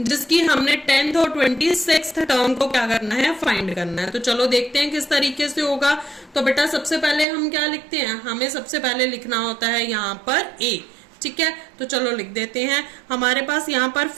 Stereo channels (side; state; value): left; drops out; at 7.2 s